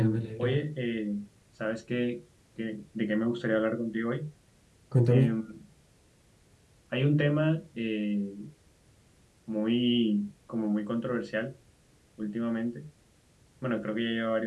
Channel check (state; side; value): identical; both; correlation 1.00